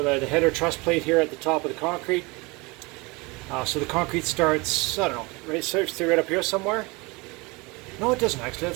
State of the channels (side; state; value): left; quieter; 25.9 dB